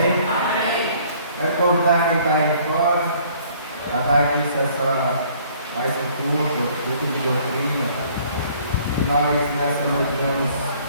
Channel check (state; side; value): inverted; both; correlation -0.58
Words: Amém. Quero convidar quem está aí fora a dar início a mais um culto de doutrina, que nós nessa noite vamos